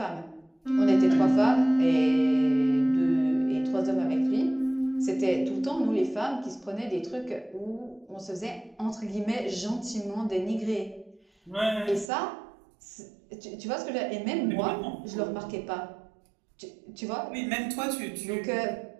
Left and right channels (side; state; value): left; drops out; at 12.1 s